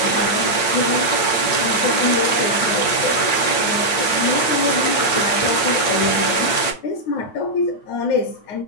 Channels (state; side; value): late; right; 9.2 ms